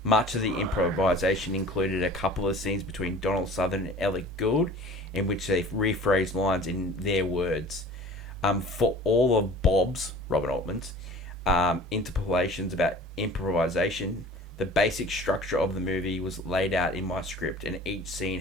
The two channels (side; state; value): both; normal; correlation 0.44